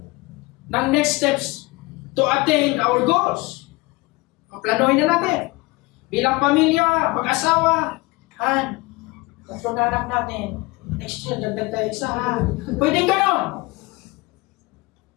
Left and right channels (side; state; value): right; quieter; 23.2 dB